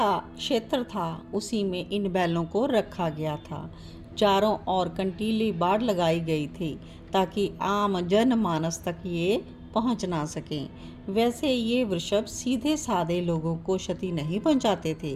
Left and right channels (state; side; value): identical; both; correlation 1.00